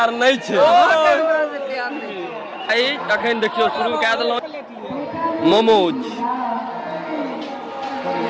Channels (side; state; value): both; identical; correlation 1.00